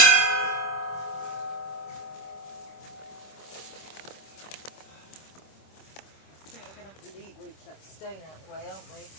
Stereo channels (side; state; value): right; late; 26 ms